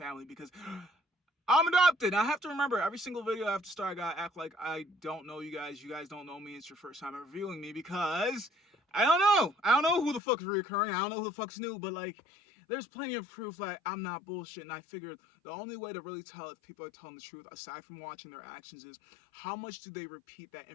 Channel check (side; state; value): right; drops out; at 10.2 s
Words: because I'm adopted. I have to remember, every single video I have to start, I gotta act like I don't know you guys. You guys don't know me. It's your first time ever viewing me, because I don't know. I don't know who the fuck is reoccurring. I don't know who the fuck's new, but like, there's plenty of proof that I'm not bullshit. And I figured the only way to really tell if people are telling the truth, aside from watching their actions, is how much do they repeat that